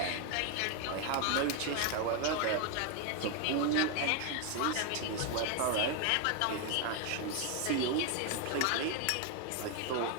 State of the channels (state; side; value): different; both; correlation 0.01